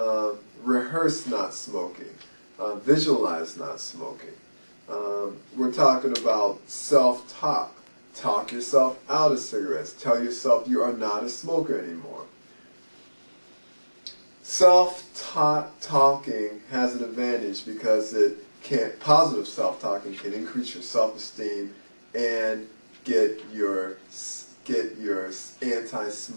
Rehearse not smoking. Visualize not smoking. We're talking about self-talk. Talk yourself out of cigarettes. Tell yourself you are not a smoker anymore. Self-talking has an advantage because positive self-talking can increase your self-esteem and get your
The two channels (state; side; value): inverted; both; correlation -1.00